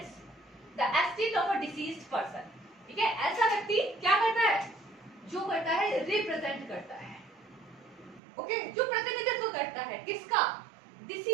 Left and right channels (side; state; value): left; drops out; at 8.2 s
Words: the estate of a deceased person. ठीक है, ऐसा व्यक्ति क्या करता है, जो करता है रिप्रेजेंट करता है, ओके, जो प्रतिनिधित्व करता है किसका,